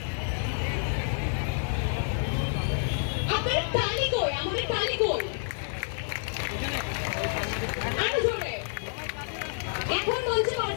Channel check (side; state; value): right; silent; 59 dB below the other